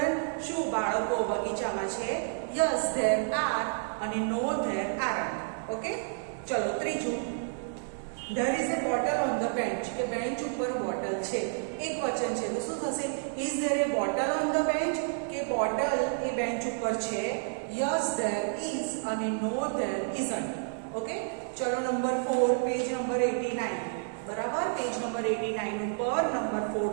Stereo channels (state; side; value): silent; left; digital silence